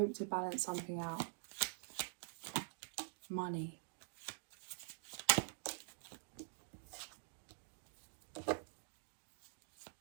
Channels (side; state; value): left; silent; digital silence